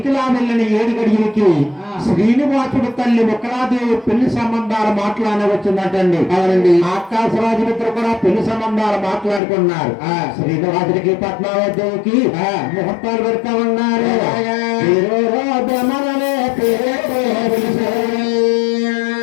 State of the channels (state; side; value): drops out; right; at 9.4 s